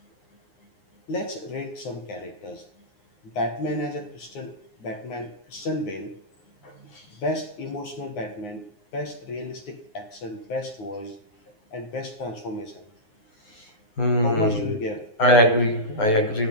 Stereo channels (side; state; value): right; late; 9.6 ms